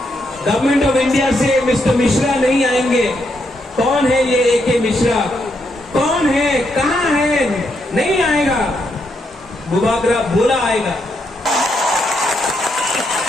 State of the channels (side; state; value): both; normal; correlation 0.79